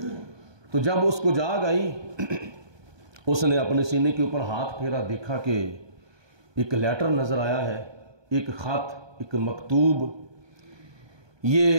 تو جب اس کو جاگ آئی، اس نے اپنے سینے کے اوپر ہاتھ پھیرا، دیکھا کہ ایک لیٹر نظر آیا ہے، ایک خط، ایک مکتوب۔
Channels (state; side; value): late; left; 1.2 ms